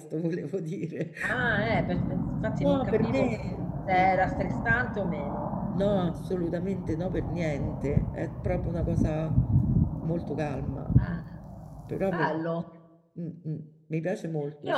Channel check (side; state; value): both; identical; correlation 1.00